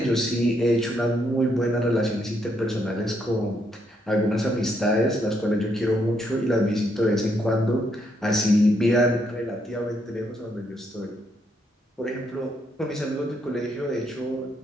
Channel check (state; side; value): normal; both; correlation 0.75